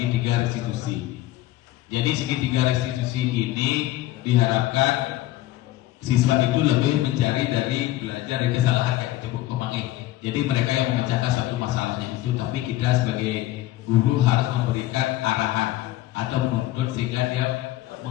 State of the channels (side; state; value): right; quieter; 15.6 dB